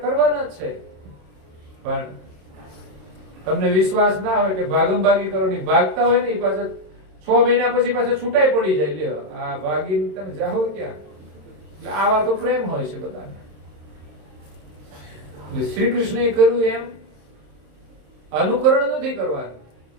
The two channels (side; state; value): left; late; 27 ms